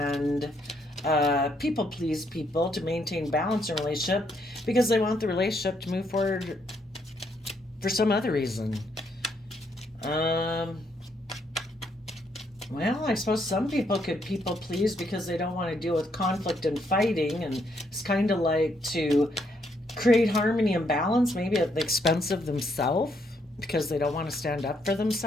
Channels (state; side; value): normal; both; correlation 0.73